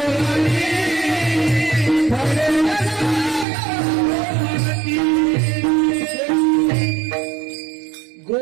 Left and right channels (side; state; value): left; drops out; at 3.5 s